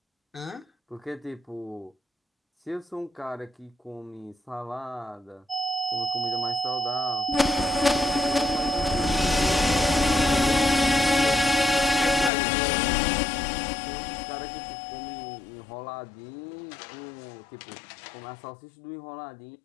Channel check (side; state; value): right; drops out; at 12.3 s